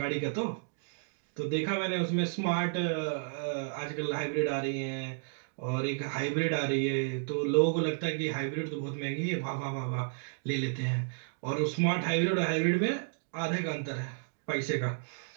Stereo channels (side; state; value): left; silent; digital silence